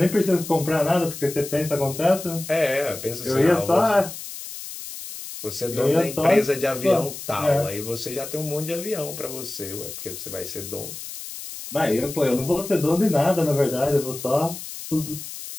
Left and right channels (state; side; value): noise; left; hiss, 10 dB below the sound